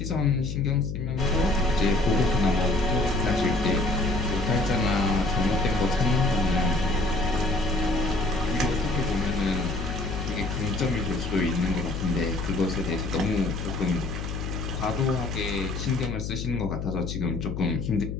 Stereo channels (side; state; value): left; noise; hum, 5 dB below the sound